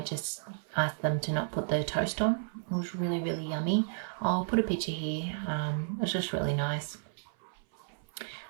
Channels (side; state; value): left; silent; 56 dB below the other